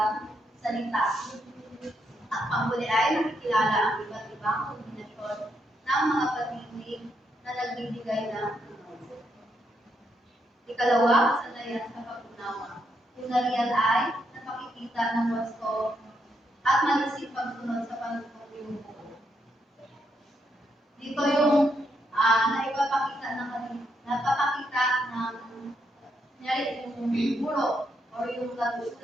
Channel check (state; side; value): normal; both; correlation 0.79